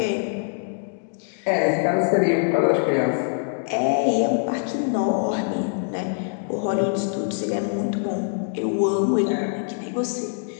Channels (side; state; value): right; silent; digital silence